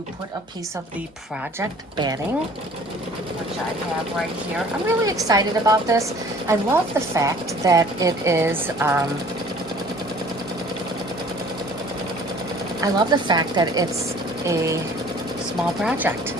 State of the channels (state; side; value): normal; both; correlation 0.51